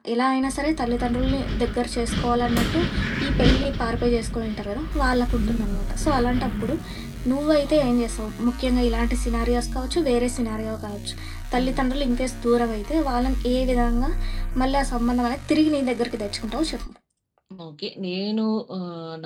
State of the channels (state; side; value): identical; both; correlation 1.00